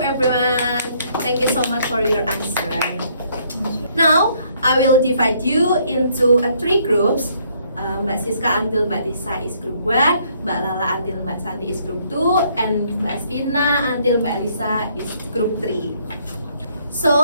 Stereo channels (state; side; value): inverted; both; correlation -0.67